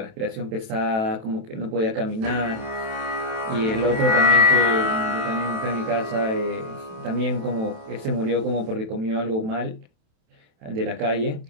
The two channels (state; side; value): late; left; 28 ms